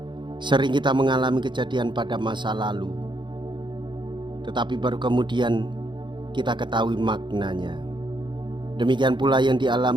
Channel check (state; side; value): late; left; 0.23 ms